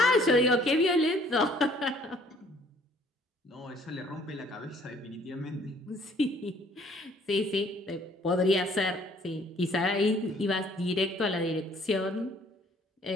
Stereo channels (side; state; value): both; normal; correlation 0.59